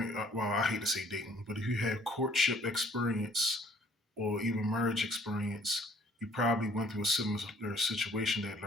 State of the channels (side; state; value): both; normal; correlation 0.58